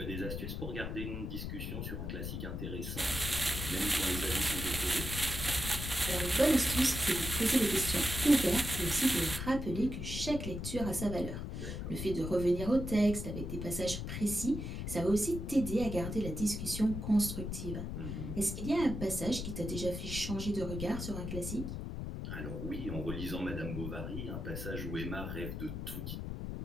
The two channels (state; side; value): noise; left; rumble, 5 dB below the sound